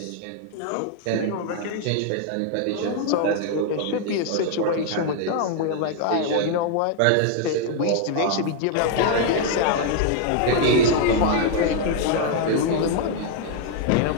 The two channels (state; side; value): different; both; correlation 0.00